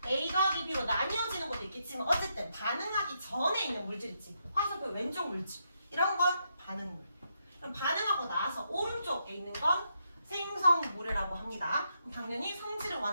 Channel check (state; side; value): inverted; both; correlation -0.80